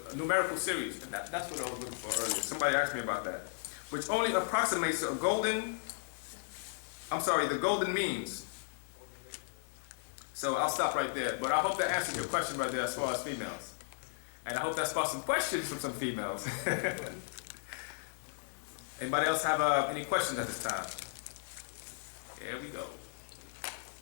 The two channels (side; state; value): right; silent; digital silence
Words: a numerical series. And that's what I was looking for earlier. Somebody asked me about that. Which only approximates the golden means. So I'll stop right there. But I hope that answers your question right there as far as females. And I hope that sparks some questions from some females. Anybody else have any questions at this time? Here we go.